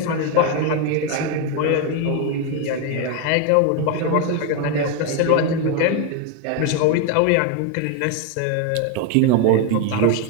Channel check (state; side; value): different; both; correlation 0.01